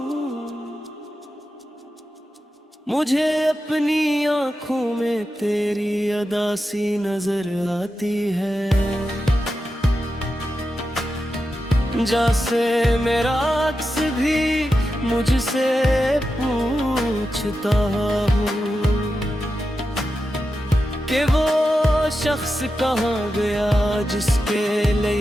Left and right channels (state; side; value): normal; both; correlation 0.90